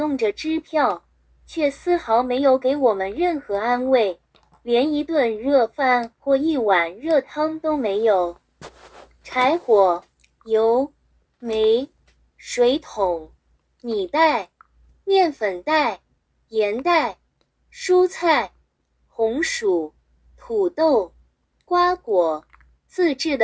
着支票，却丝毫没有给我们任何安慰，连一顿热饭或一碗热汤都没有。柴火、油、煤、水桶、米袋、面粉袋、盐袋、蔬菜、红薯、土豆、瓜果、自制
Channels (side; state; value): both; identical; correlation 1.00